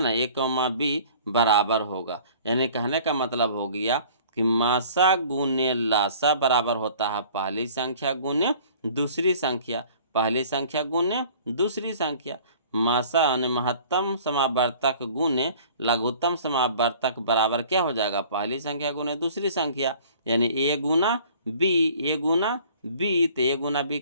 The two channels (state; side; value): inverted; both; correlation -0.50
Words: ए कौमा बी बराबर होगा, यानी कहने का मतलब हो गया कि मासा गुने लासा बराबर होता है पहली संख्या गुने दूसरी संख्या, पहली संख्या गुने दूसरी संख्या। मासा यानी महत्तम समावर्तक गुने लघुत्तम समावर्तक बराबर क्या हो जाएगा, पहली संख्या गुने दूसरी संख्या, यानी ए गुना बी, ए गुना बी, तो ए गुना बी